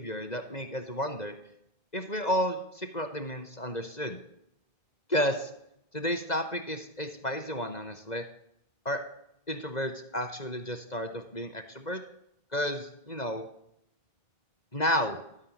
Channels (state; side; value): late; right; 2.0 ms